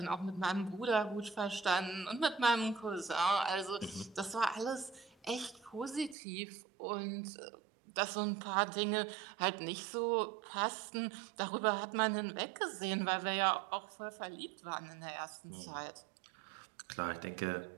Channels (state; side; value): drops out; left; at 6.2 s